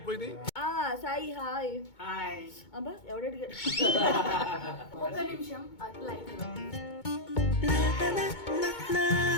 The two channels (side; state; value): right; late; 2.2 ms